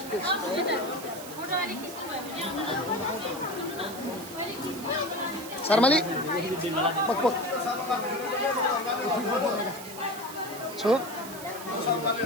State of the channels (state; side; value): noise; right; hiss, 13 dB below the sound